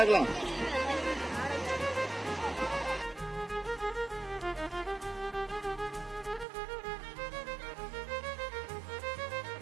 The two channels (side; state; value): left; drops out; at 6.5 s